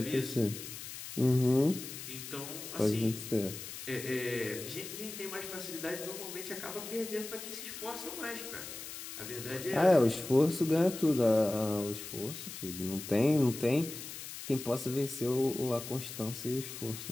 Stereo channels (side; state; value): left; noise; hiss, 10 dB below the sound